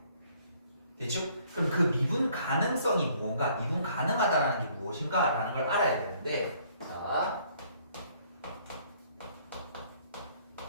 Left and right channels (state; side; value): inverted; both; correlation -0.62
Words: 됐죠? 그럼 그 미분 가능성이 뭔가, 미분 가능하다는 게 무엇인가 라는 걸 알아야 되는데, 자,